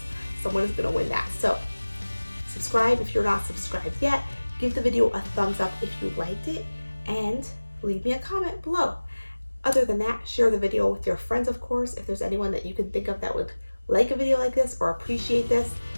someone is gonna win that. So subscribe if you're not subscribed yet. Give the video a thumbs up if you liked it, and leave me a comment below. Other than that, share the video with your friends, of course, if there's anyone that you can think of that would like a video like this or appreciate this.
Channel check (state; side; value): inverted; both; correlation -1.00